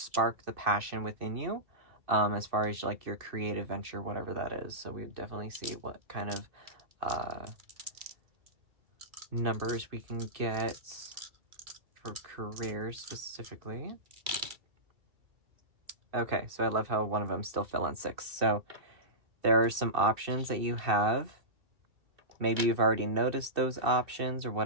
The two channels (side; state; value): left; late; 2.6 ms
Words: the passion within you, as far as like your creative venture, whatever that is. So we definitely see what kind of numbers we can get for careers specifically. Okay, so I love how one of them still fell on 6. So there are some options that you have. Maybe you've already noticed those options or